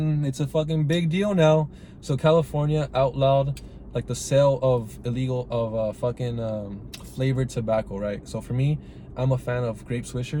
fucking big deal now. So California outlawed like the sale of flavored tobacco, right? So for me, I'm a fan of grape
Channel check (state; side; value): identical; both; correlation 1.00